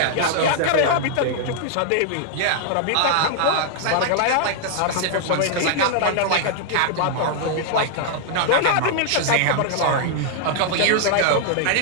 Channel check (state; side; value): different; both; correlation -0.01